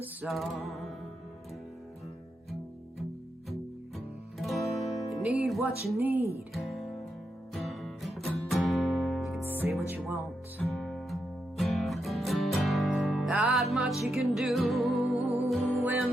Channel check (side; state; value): both; normal; correlation 0.84